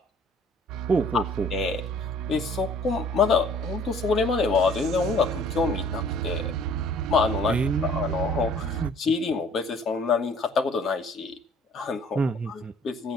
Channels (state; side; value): normal; both; correlation 0.54